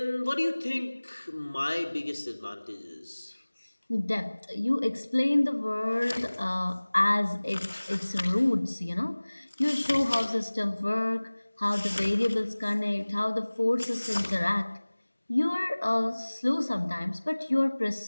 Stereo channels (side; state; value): both; inverted; correlation -1.00